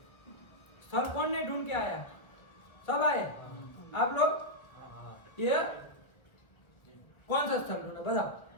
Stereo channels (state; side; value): late; right; 1.2 ms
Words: स्थल कौन नहीं ढूंढ के आया? सब आए आप लोग? ये कौन सा स्थल ढूंढा